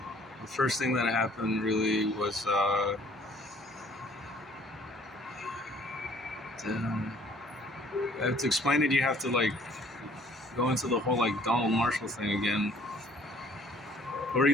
first thing that happened really was to explain it, you have to like go into the whole like Donald Marshall thing again, where he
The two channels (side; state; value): both; normal; correlation 0.57